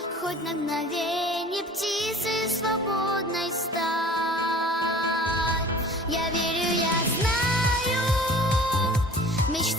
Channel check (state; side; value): normal; both; correlation 0.45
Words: хоть на мгновенье птицей свободной стать. Я верю, я знаю, в